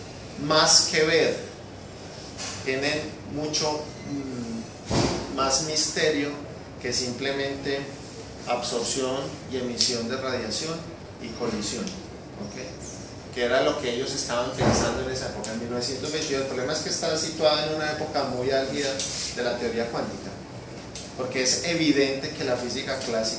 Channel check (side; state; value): both; identical; correlation 1.00